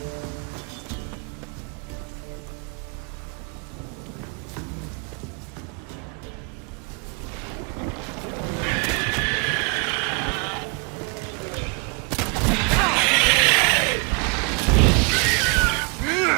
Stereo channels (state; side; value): quieter; left; 34.0 dB